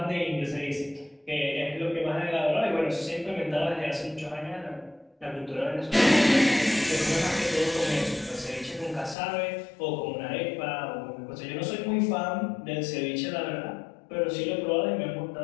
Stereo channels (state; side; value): drops out; right; at 9.2 s